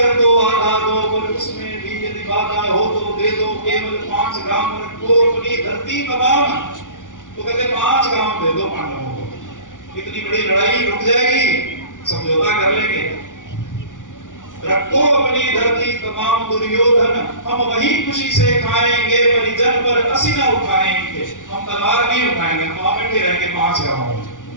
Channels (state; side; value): late; right; 0.87 ms